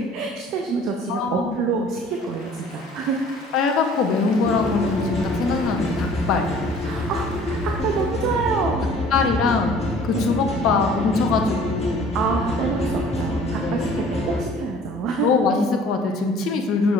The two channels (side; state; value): both; normal; correlation 0.51